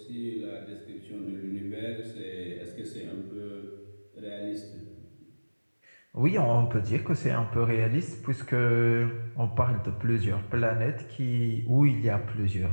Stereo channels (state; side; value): inverted; both; correlation -1.00